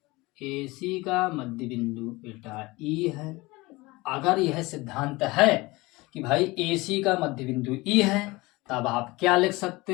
AC का मध्य बिंदु बेटा E है। अगर यह सिद्धांत है कि भाई AC का मध्य बिंदु E है, तब आप क्या लिख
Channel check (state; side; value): quieter; right; 22.1 dB